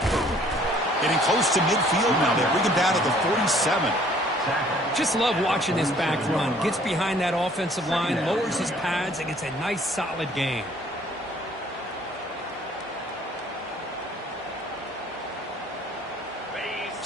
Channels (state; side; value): normal; both; correlation 0.58